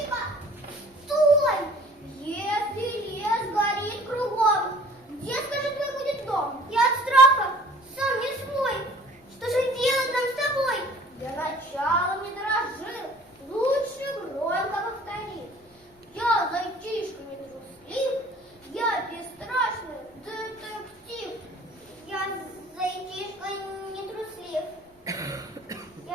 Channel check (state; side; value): normal; both; correlation 0.50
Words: Стой! Если лес горит кругом, где, скажи, твой будет дом? Я от страха сам не свой. Что же делать нам с тобой? Для начала не дрожи. Лучше громко повтори. Я зайчишка не труслив. Я бесстрашный детектив. Я зайчишка не труслив.